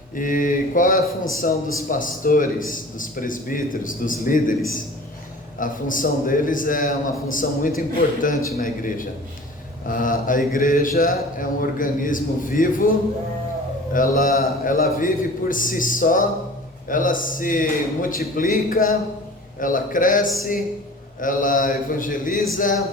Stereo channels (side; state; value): both; normal; correlation 0.42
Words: E qual é a função dos pastores, dos presbíteros, dos líderes? A função deles é uma função muito importante na igreja. A igreja é um organismo vivo, ela vive por si só, ela se multiplica, ela cresce, ela evangeliza,